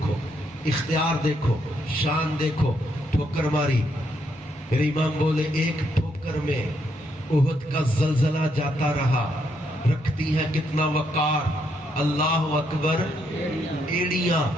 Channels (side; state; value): both; normal; correlation 0.76